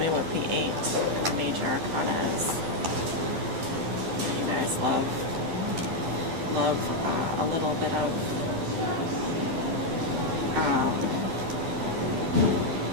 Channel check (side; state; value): left; late; 12 ms